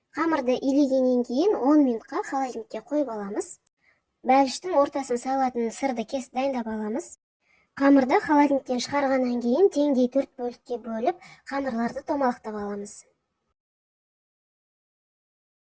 Қамырды илегеннен кейін 10 минутқа холодильникке қойып аламыз. Бәліштің ортасын салатын сырды кесіп дайындап аламыз. Қамырды холодильниктен шығарғаннан кейін теңдей 4 бөлікке бөліп, қамырларды томалақтап аламыз.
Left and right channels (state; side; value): identical; both; correlation 1.00